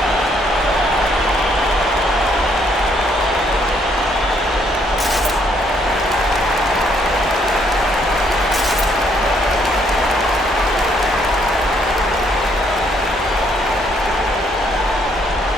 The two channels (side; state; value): both; normal; correlation 0.69